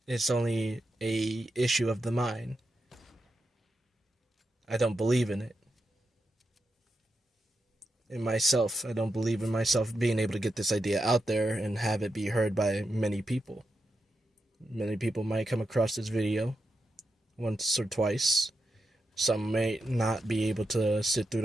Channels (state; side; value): normal; both; correlation 0.86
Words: it's only a issue of the mind. I don't believe in it. In myself, I don't believe in myself being able to get this idea out there and have it be heard by many people. Many people might come across this video once or twice. Some may not be able to sit through